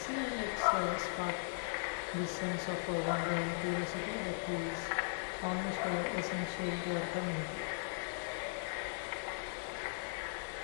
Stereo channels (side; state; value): right; silent; digital silence